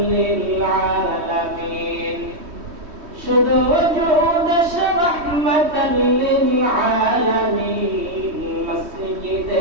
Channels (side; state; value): left; late; 3.1 ms